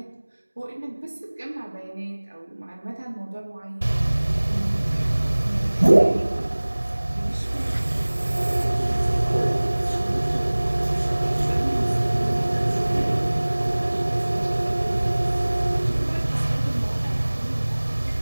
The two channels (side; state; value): both; inverted; correlation -1.00